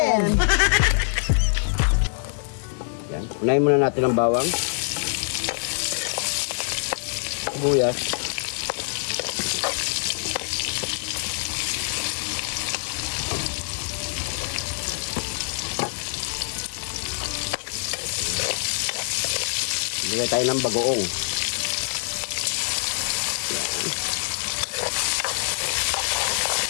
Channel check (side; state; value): right; silent; digital silence